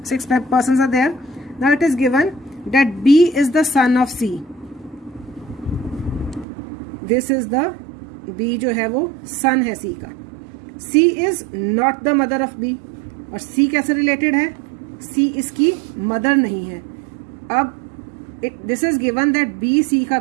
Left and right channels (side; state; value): left; drops out; at 6.5 s